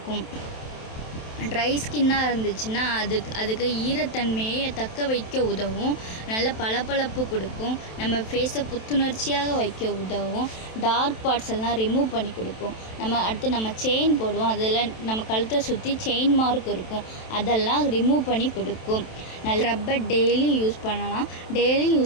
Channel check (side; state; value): right; late; 27 ms